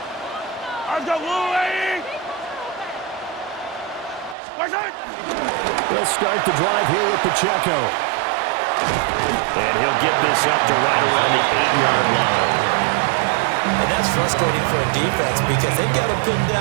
They'll start the drive here with Pacheco. And he'll get this up to right around the 8-yard line. And that's frustrating for a defense because they've got them pinned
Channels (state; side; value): drops out; left; at 4.4 s